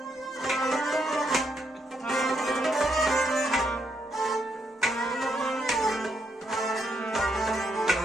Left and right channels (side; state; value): both; normal; correlation 0.77